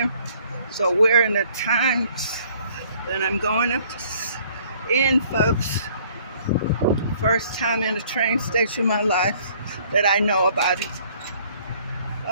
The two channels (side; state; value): both; inverted; correlation -0.59